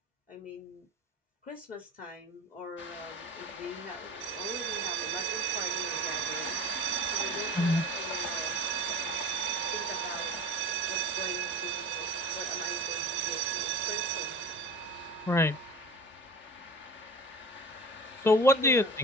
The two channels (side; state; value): both; normal; correlation 0.37